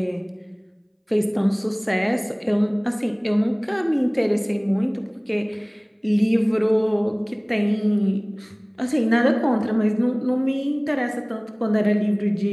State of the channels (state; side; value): identical; both; correlation 1.00